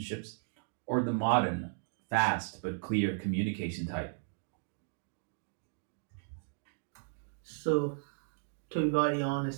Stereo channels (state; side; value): silent; left; digital silence